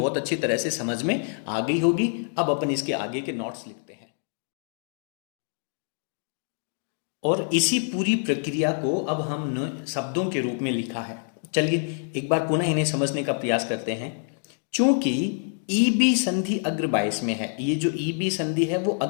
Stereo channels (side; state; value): right; silent; 61 dB below the other